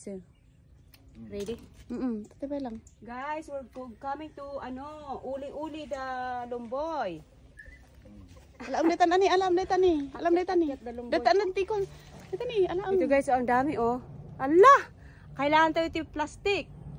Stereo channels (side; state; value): both; identical; correlation 1.00